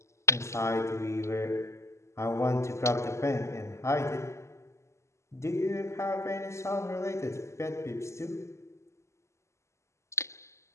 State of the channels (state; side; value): late; right; 0.13 ms